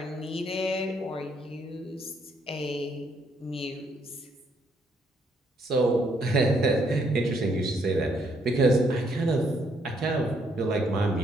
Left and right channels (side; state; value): both; normal; correlation 0.71